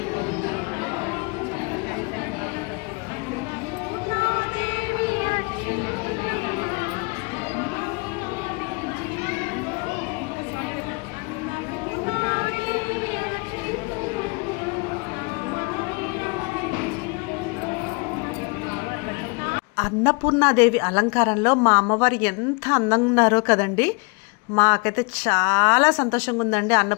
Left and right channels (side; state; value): right; quieter; 30.8 dB